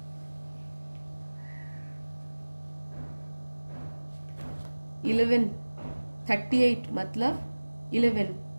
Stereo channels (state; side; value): inverted; both; correlation -1.00